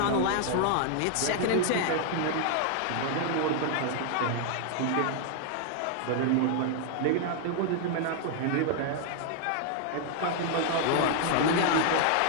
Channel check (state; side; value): different; both; correlation 0.00